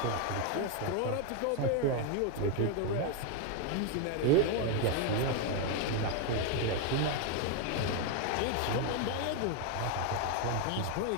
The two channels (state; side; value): different; both; correlation 0.01